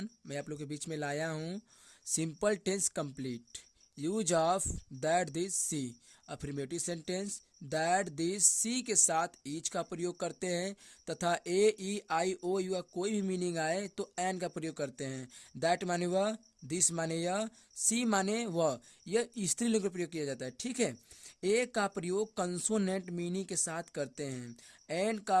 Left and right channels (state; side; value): identical; both; correlation 1.00